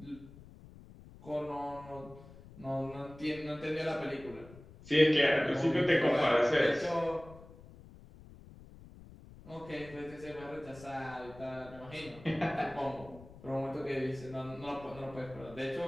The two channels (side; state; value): left; noise; rumble, 19 dB below the sound